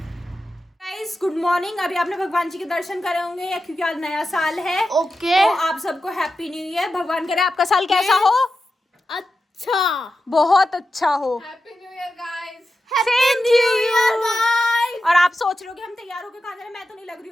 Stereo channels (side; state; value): both; normal; correlation 0.91